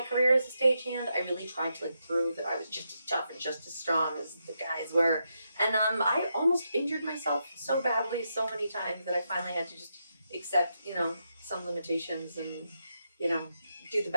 career as a stagehand, I really tried to like prove that I was just as tough and just as strong as the guys were. And I almost injured myself so badly so many times that I finally had to just accept, some limitations and, do the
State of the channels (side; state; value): both; inverted; correlation -0.83